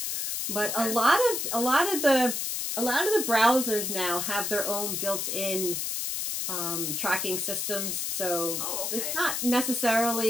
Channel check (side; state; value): left; noise; hiss, 2 dB below the sound